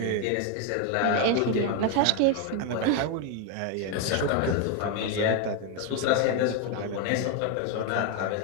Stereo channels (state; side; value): different; both; correlation 0.01